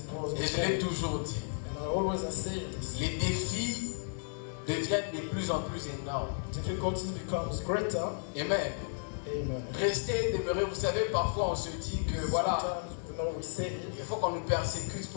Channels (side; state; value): right; silent; digital silence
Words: Et je l'ai toujours dit. Les défis deviennent de plus en plus énormes. Amen. Rester, demeurer, vous savez, parfois on se dit que voilà, il faut qu'on nous persécute